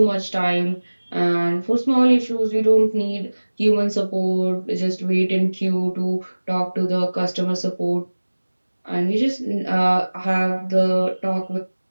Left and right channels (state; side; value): inverted; both; correlation -1.00